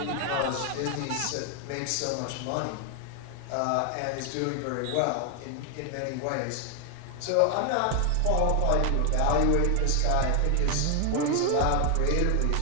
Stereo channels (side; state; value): both; different; correlation 0.00